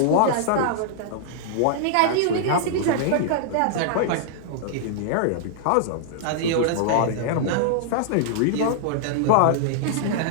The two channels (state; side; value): different; both; correlation -0.01